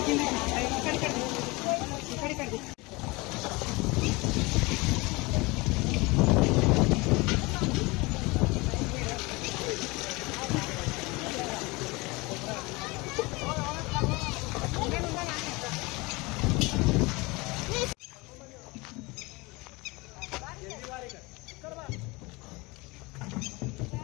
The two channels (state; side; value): quieter; right; 24.5 dB